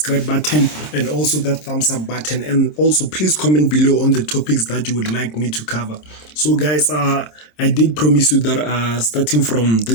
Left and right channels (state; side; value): late; right; 26 ms